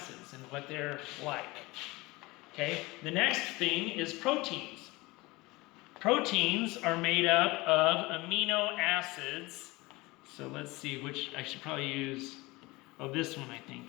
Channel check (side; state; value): right; quieter; 22.3 dB